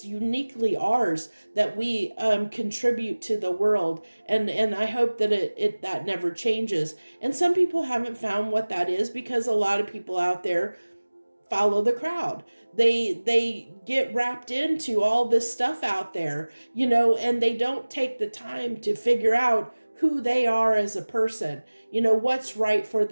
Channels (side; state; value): both; inverted; correlation -1.00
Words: uniquely ours, that we contribute to the world. And I hope that it that never changes. And some people haven't found what that is, because a lot of people out there follow the crowd. They get wrapped into all this stuff out there, and they don't take the time to figure out who they are as a person, what's right for